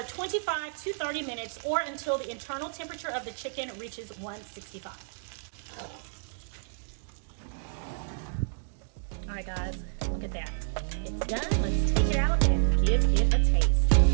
25 to 30 minutes, or until the internal temperature of the chicken reaches 165. All right, guys, look at that. It's done. Let's take it out and give it a taste.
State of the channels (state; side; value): silent; left; digital silence